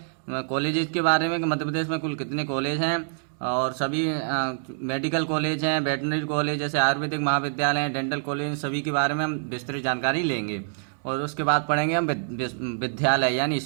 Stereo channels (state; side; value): silent; left; digital silence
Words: कॉलेजेस के बारे में कि मध्य प्रदेश में कुल कितने कॉलेज हैं और सभी मेडिकल कॉलेज हैं, वेटनरी कॉलेज जैसे आयुर्वेदिक महाविद्यालय हैं, डेंटल कॉलेज, सभी के बारे में हम विस्तृत जानकारी लेंगे। और उसके बाद पढ़ेंगे हम विद्यालय यानी